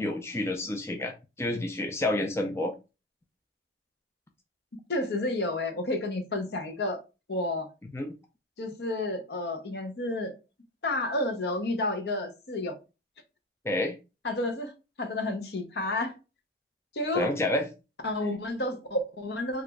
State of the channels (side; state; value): both; normal; correlation 0.25